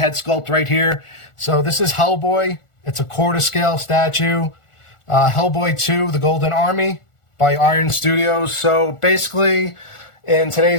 sculpt right here. So this is Hellboy. It's a quarter scale statue. Hellboy 2, The Golden Army by Iron Studios. So basically, in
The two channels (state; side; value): late; right; 1.4 ms